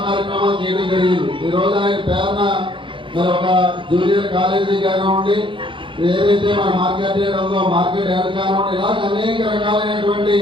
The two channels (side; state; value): left; late; 0.24 ms